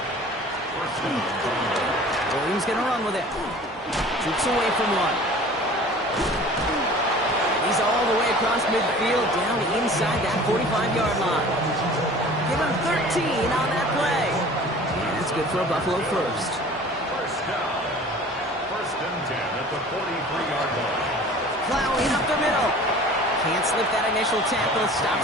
Williams going to run with it. Shoots away from one. He's all the way across midfield, down inside that 45-yard line. Give him 13 on that play. And that's good for a Buffalo first. First down. First and 10 at the 43-yard line. Plowing up the middle. Can't slip that initial tackle.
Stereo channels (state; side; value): normal; both; correlation 0.45